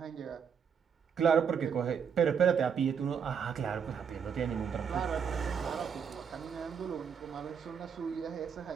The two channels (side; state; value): left; quieter; 7.1 dB